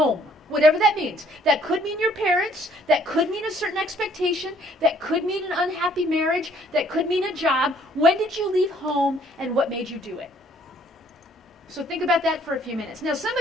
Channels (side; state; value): both; normal; correlation 0.62